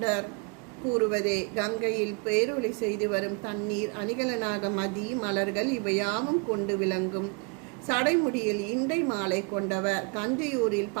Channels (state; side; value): quieter; left; 34.2 dB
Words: கூறுவதே. கங்கையில் பேரொளி செய்து வரும் தண்ணீர் அணிகலனாக மதி மலர்கள் இவையாவும் கொண்டு விளங்கும் சடைமுடியில் இண்டை மாலை கொண்டவர். கண்டியூரில்